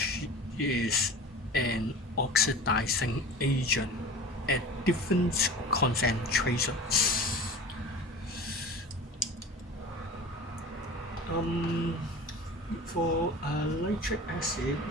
is an oxidizing agent at different concentrations. For nitric acid,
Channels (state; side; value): normal; both; correlation 0.37